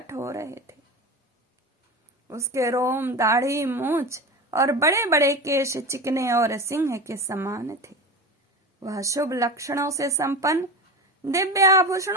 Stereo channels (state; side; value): normal; both; correlation 0.26